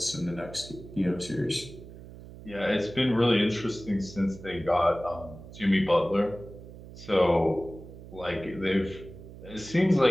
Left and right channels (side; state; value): right; noise; hum, 16 dB below the sound